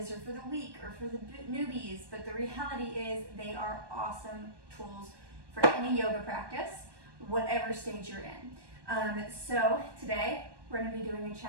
or for the weak or for the newbies, but the reality is they are awesome tools for any yoga practice, whatever stage you're in. So today we're going to be doing a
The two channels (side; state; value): left; late; 1.2 ms